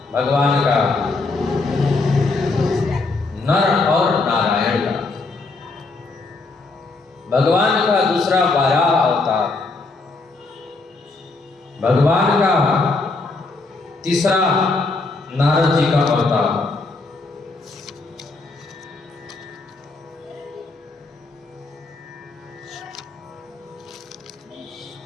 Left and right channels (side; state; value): right; quieter; 3.6 dB